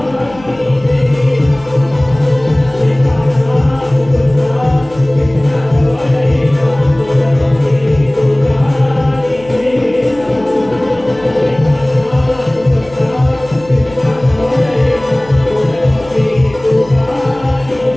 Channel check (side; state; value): left; noise; hum, 21 dB below the sound